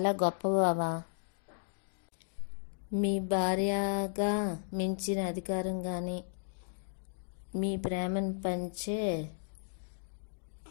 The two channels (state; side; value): silent; right; digital silence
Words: గొప్ప బావా. మీ భార్యగా మించిన అధికారం కానీ మీ ప్రేమను పంచే